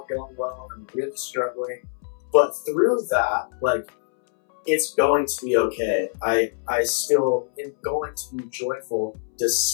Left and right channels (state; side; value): silent; right; 63 dB below the other